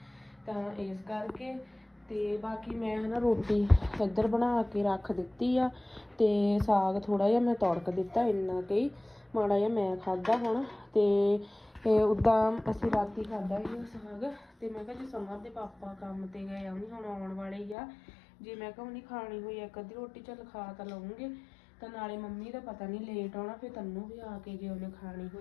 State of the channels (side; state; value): right; drops out; at 17.8 s